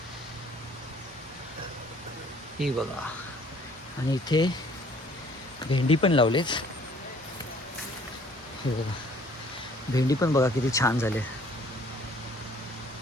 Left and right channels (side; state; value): both; normal; correlation 0.57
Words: हे बघा. आणि इथे भेंडी पण लावलेत. हे बघा भेंडी पण बघा किती छान झाले.